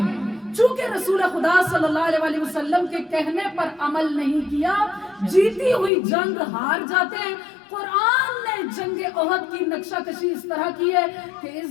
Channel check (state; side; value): drops out; right; at 5.9 s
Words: چونکہ رسول خدا صلی اللہ علیہ وآلہ وسلم کے کہنے پر عمل نہیں کیا، جیتی ہوئی جنگ ہار جاتے ہیں۔ قرآن نے جنگ احد کی نقشہ کشی اس طرح کی ہے کہ اذ